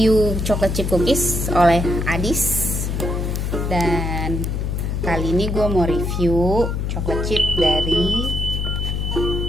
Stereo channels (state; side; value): noise; left; hum, 1 dB below the sound